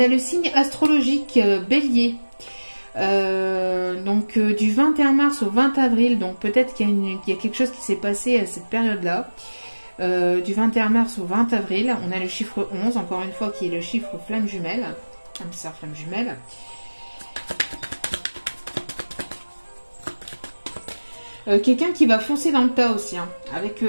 le signe astrologique Bélier. Donc du 21 mars au 20 avril. Donc peut-être qu'il y a quelque chose qui s'est passé à cette période-là. Du 21 mars au 20 avril, on a le chiffre 11, encore une fois, qui est le chiffre flamme jumelle. Âme sœur flamme jumelle. Quelqu'un qui va foncer dans le tas aussi. Hein. Avec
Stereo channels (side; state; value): both; inverted; correlation -1.00